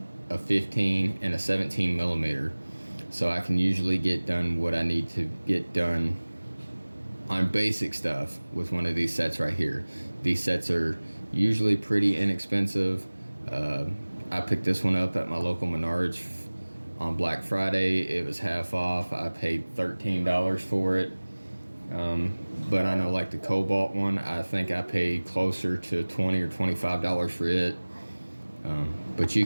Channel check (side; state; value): both; inverted; correlation -1.00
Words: a 15, and a 17 millimeter. So I can usually get done what I need to get done on basic stuff with one of these sets right here. These sets are usually pretty inexpensive. I picked this one up at my local Menards on Black Friday. It was half off. I paid $13 for it. But I know like the Cobalt one, I think I paid closer to $20 or $25 for it. But you